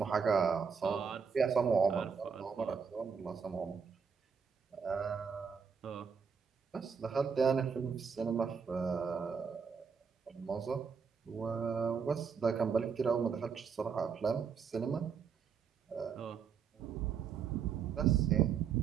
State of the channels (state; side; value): quieter; left; 6.3 dB